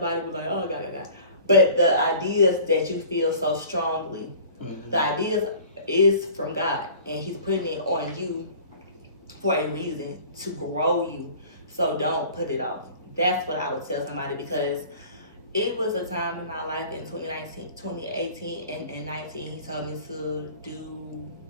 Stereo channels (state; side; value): inverted; both; correlation -0.45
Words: to be like, oh, God. But the ideas that you feel so strongly, the ideas is from God, and He's putting it on you for a reason to grow you. So don't put it off. That's what I would tell somebody, because it was a time in my life in 2018 and 19. He told me to do